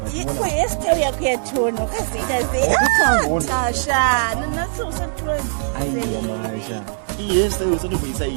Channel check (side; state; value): left; silent; digital silence